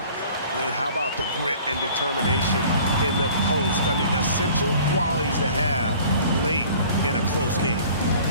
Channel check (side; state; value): both; inverted; correlation -0.49